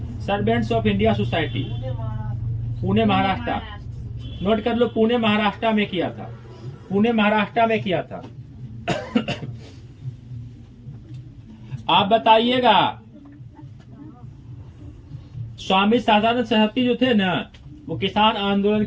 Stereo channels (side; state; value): both; identical; correlation 1.00